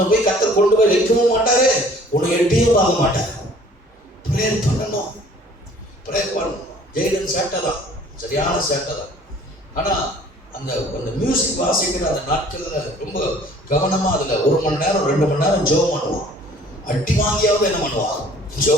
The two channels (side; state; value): both; normal; correlation 0.53